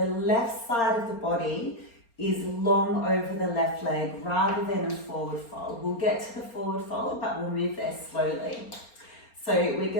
left side of the body is long over the left leg rather than a forward fold. We'll get to the forward fold, but we'll move there slowly. So we're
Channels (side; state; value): right; late; 4.3 ms